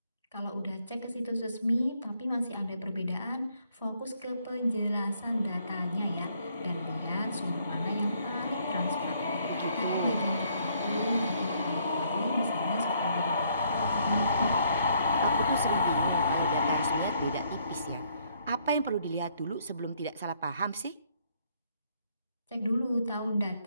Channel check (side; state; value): both; inverted; correlation -0.68